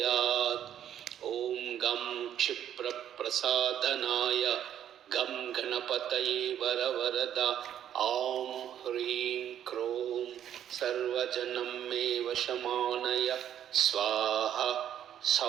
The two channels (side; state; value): left; quieter; 10.2 dB